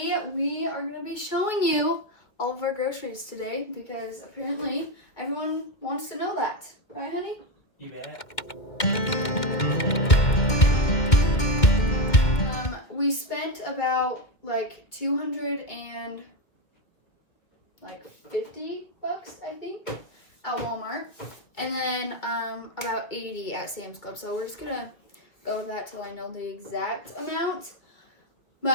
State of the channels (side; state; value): right; late; 2.1 ms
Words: we are going to be showing you all of our groceries today because apparently everyone wants to know that. Right, honey? You bet. We spent about like $250, I think, at Walmart, and then about $80 at Sam's Club. So we're just gonna go with that till I know the exact amount.